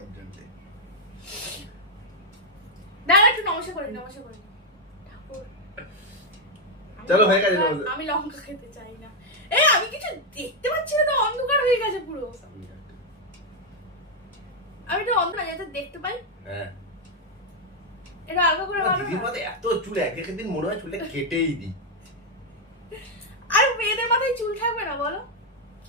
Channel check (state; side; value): normal; both; correlation 0.00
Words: জন্য। দাঁড়া একটু নমস্কার করে নিই, নমস্কার করে নিই। ঠাকুর চলো, হয়ে গেছে নমস্কার। আমি লঙ্কা খেতে চাই না। আমি কিছু দেখতে পাচ্ছি না তো, অন্ধকার হয়ে গেছে পুরো। আমি একটু অন্ধকার যাতে দেখতে পাই। হ্যাঁ, এটা আলগা করে ভালো দিদির না? মাথায় এত চুল, এক দিন মনে হয় চুলে কেটেই দিই। আর মেয়েদের মাথায় চুল থাকবে না বলো?